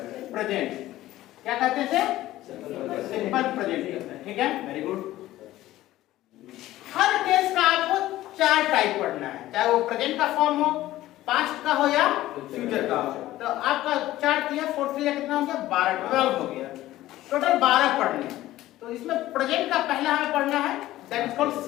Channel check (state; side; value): quieter; right; 15.4 dB